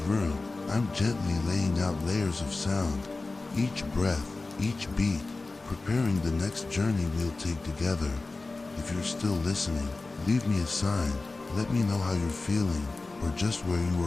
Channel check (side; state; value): right; quieter; 3.4 dB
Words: room, I'm gently laying out layers of sound, each breath, each beat, preparing the next journey we'll take together. If you're still listening, leave me a sign. Let me know how you're feeling or just where you